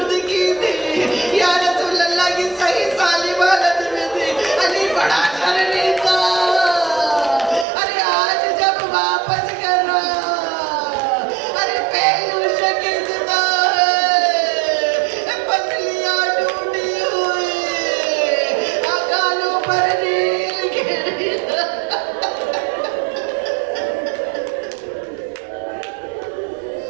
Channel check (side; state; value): left; drops out; at 7.7 s